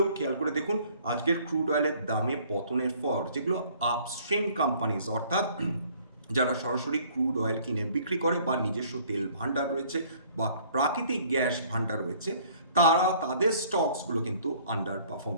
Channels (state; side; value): inverted; both; correlation -0.57